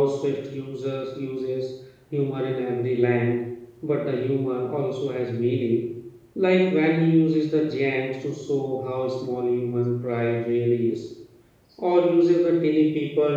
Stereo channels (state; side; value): identical; both; correlation 1.00